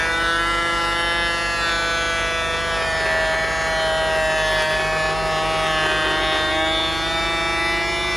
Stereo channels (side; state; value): right; noise; hum, 9 dB below the sound